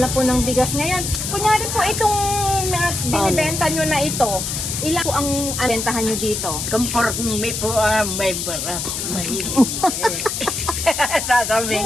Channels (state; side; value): noise; left; hiss, 3 dB below the sound